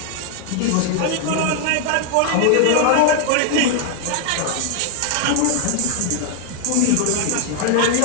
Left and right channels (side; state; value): both; different; correlation 0.00